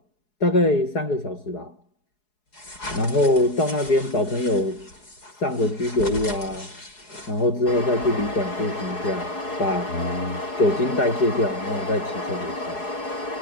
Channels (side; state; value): right; late; 4.7 ms